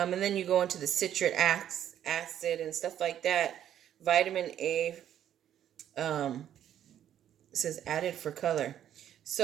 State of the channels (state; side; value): quieter; left; 10.6 dB